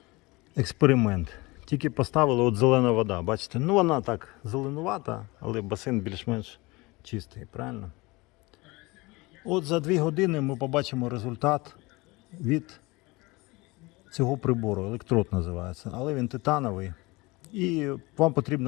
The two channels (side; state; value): right; quieter; 23.4 dB